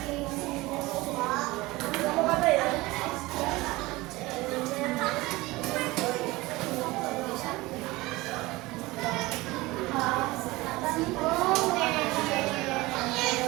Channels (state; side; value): quieter; left; 20.7 dB